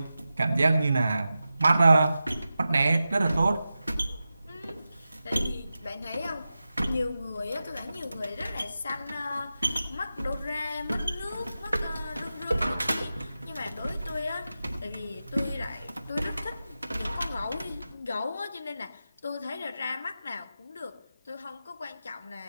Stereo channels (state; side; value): inverted; both; correlation -0.92